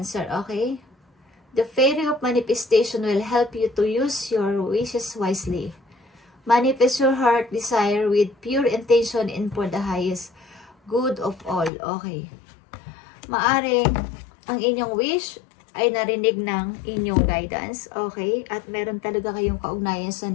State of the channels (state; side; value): drops out; right; at 11.7 s